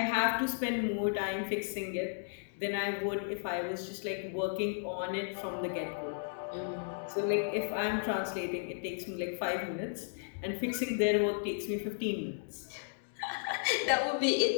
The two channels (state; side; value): silent; right; digital silence